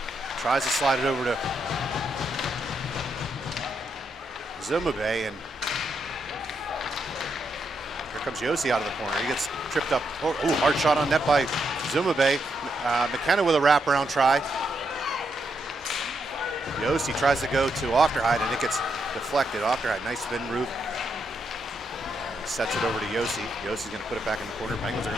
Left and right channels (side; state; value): both; normal; correlation 0.80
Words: tries to slide it over to Zumabe, and here comes Yossi out of the corner. He gets tripped up. Oh, hard shot on net by Zumabe. McKenna with a wraparound try. Yossi tries to go to Ofterhide, and it gets deflected. Ofterhide, nice spin route. And sets it over to Yossi. Yossi's going to put it back in the corner. Penguins are